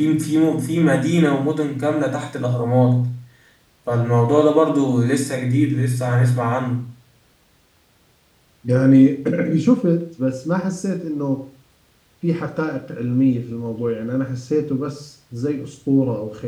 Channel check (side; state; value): both; identical; correlation 1.00